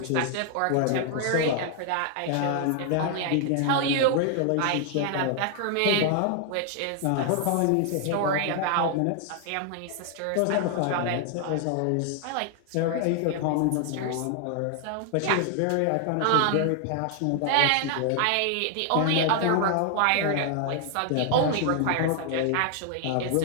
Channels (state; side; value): different; both; correlation 0.00